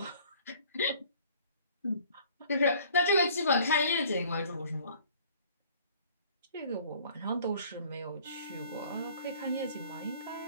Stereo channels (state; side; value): inverted; both; correlation -0.53